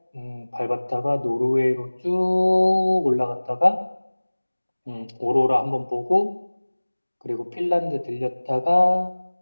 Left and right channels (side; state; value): both; inverted; correlation -1.00